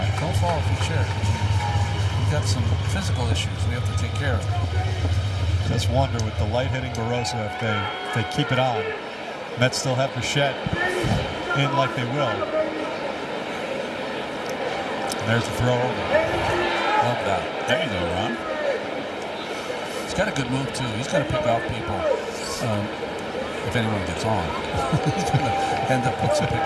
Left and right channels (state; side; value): identical; both; correlation 1.00